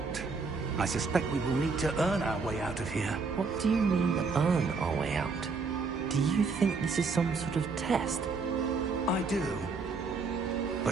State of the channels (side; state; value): left; quieter; 4.5 dB